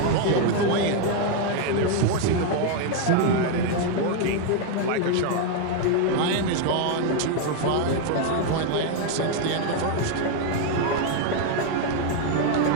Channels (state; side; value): different; both; correlation 0.01